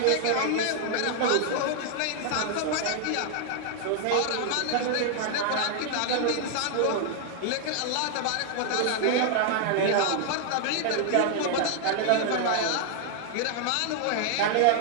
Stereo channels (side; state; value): both; different; correlation 0.00